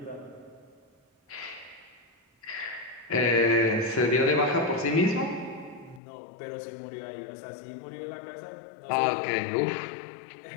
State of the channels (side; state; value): right; drops out; at 6.0 s